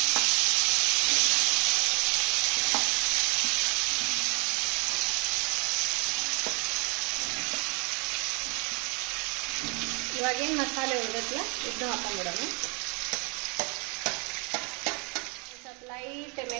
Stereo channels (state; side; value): quieter; left; 32.9 dB